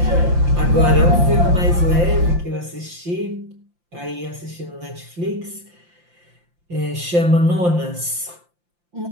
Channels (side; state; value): left; late; 5.8 ms